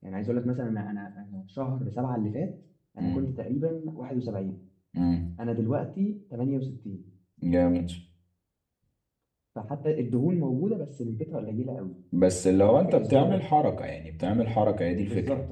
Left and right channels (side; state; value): both; identical; correlation 1.00